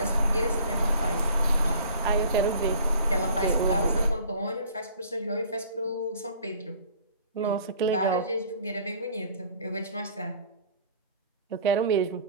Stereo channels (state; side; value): inverted; both; correlation -0.49